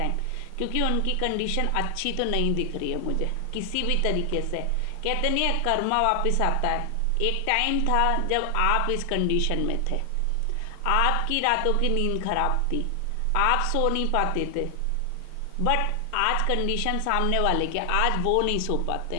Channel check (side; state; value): both; different; correlation 0.00